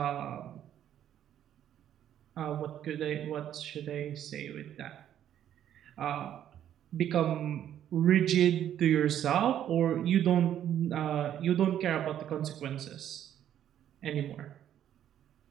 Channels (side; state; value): left; quieter; 10.6 dB